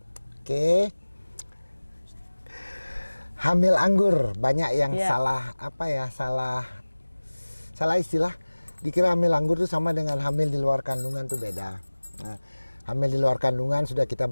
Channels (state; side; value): inverted; both; correlation -1.00